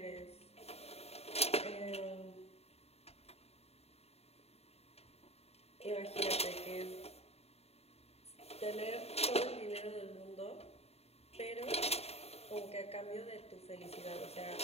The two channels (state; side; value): late; right; 0.30 ms